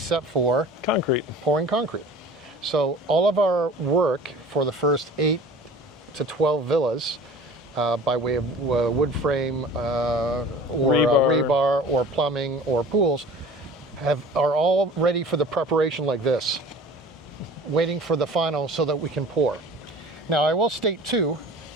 for pouring concrete. So all of our work for the first 8 to 12 villas, by way of wood frame or rebar or plumbing or pools, are all ready for the preparation like this, waiting for the final so that we can pour. Now I will state too,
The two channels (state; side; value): normal; both; correlation 0.42